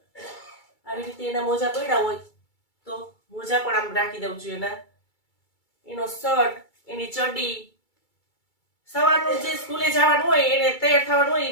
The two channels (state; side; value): late; right; 2.3 ms